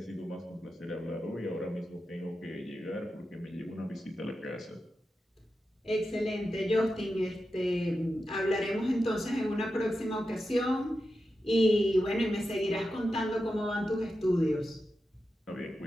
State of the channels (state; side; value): normal; both; correlation 0.90